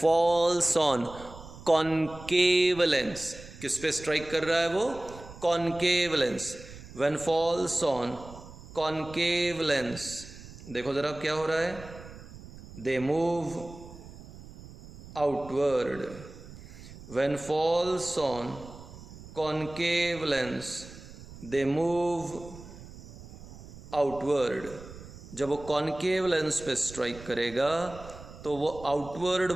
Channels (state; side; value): noise; right; rumble, 16 dB below the sound